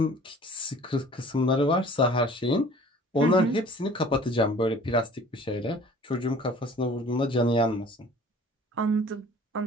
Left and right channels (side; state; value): both; normal; correlation 0.49